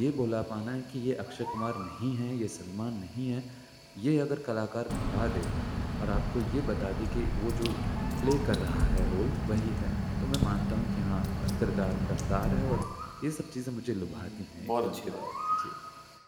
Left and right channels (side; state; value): both; identical; correlation 1.00